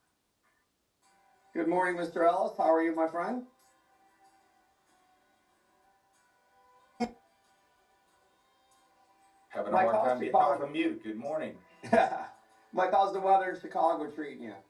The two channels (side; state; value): both; identical; correlation 1.00